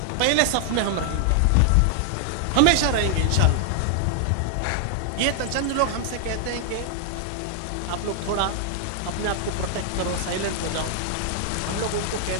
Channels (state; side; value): different; both; correlation 0.00